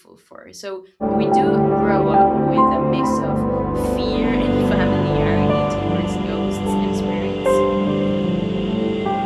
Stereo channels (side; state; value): both; identical; correlation 1.00